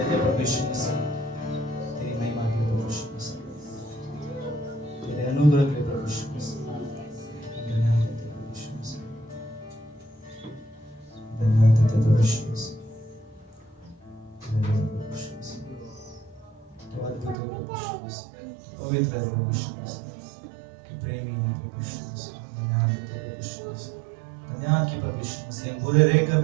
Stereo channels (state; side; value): drops out; left; at 17.4 s